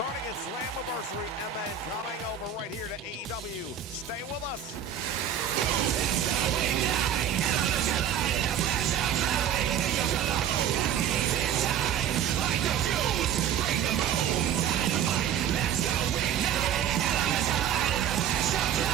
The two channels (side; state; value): left; quieter; 9.1 dB